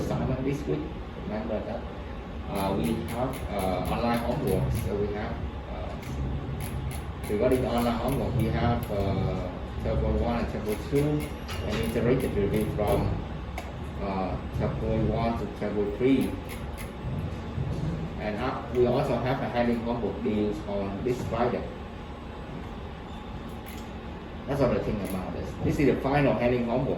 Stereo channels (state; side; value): identical; both; correlation 1.00